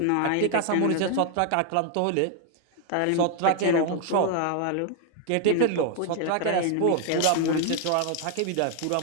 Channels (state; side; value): different; both; correlation 0.00